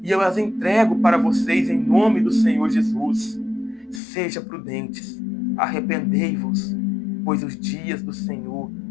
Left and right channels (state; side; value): drops out; right; at 4.0 s